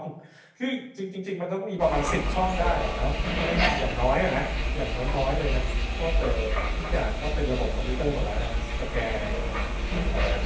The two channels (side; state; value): both; identical; correlation 1.00